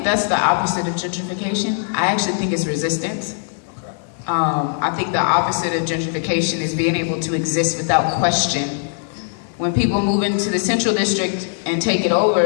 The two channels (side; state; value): right; silent; digital silence